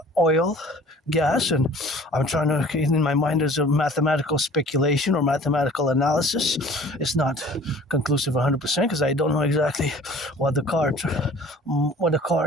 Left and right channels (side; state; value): both; normal; correlation 0.48